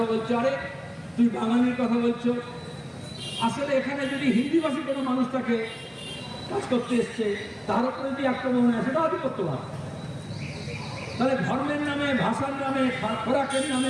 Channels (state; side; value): identical; both; correlation 1.00